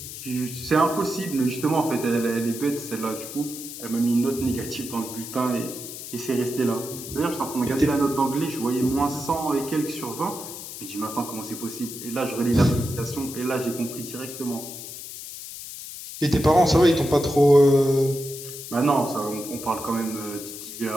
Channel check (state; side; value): noise; left; hiss, 10 dB below the sound